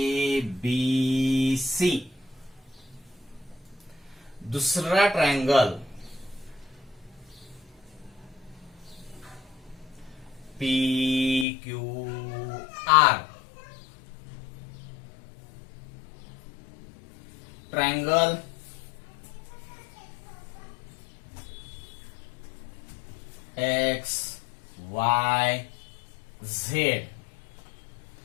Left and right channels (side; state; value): right; drops out; at 11.5 s